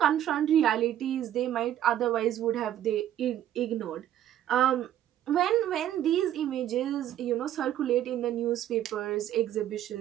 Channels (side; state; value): left; quieter; 11.7 dB